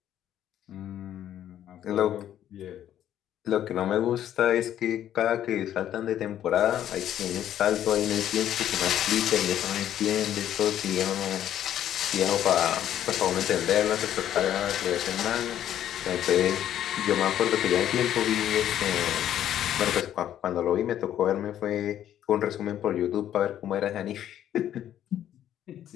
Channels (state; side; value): quieter; right; 11.1 dB